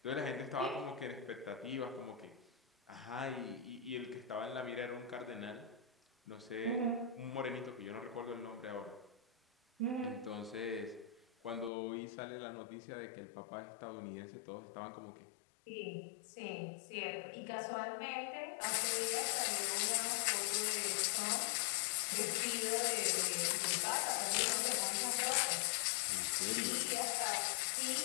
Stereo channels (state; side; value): drops out; right; at 11.7 s